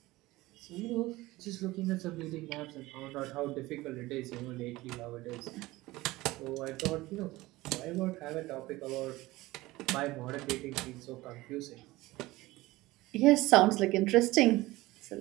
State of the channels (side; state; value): left; quieter; 19.1 dB